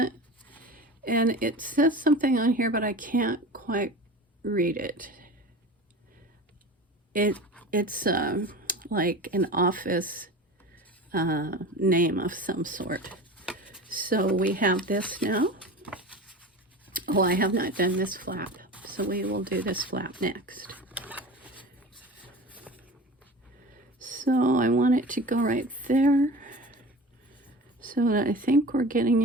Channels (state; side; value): normal; both; correlation 0.34